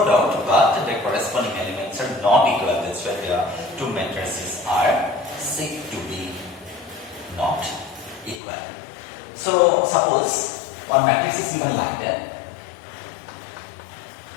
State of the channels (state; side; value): drops out; right; at 8.4 s